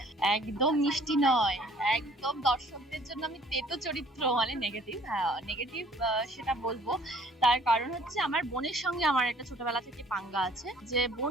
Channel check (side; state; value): both; normal; correlation 0.56